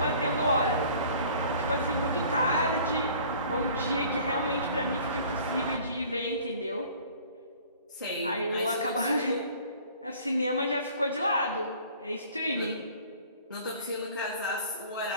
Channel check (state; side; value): inverted; both; correlation -0.51